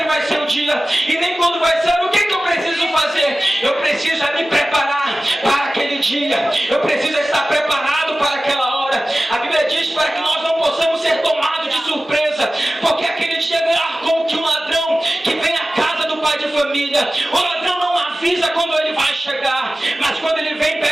vai ser o dia, e nem quando vai ser. O que eu preciso fazer? Eu preciso me preparar para aquele dia, eu preciso estar preparado para aquela hora. A Bíblia diz para que nós não possamos ser tomados de surpresa, porque aquele dia virá como que um ladrão que vem à casa do pai de família. O ladrão não avisa quando ele vai chegar, mas quando ele vem,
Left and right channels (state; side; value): normal; both; correlation 0.96